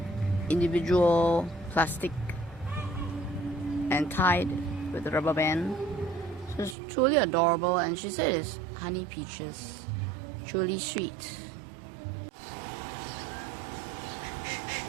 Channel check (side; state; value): left; drops out; at 6.8 s